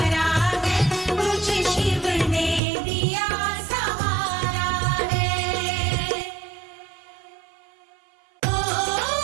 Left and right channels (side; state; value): left; drops out; at 2.6 s